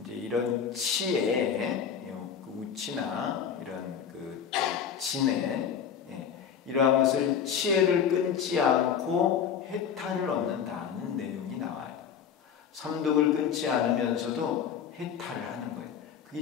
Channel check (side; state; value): right; quieter; 7.7 dB